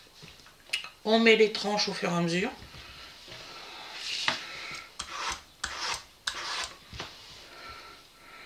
on met les tranches au fur et à mesure.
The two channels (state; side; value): identical; both; correlation 1.00